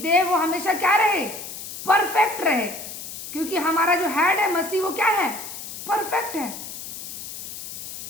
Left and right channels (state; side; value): noise; left; hiss, 10 dB below the sound